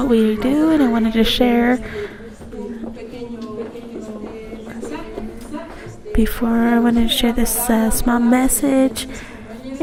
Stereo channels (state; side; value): identical; both; correlation 1.00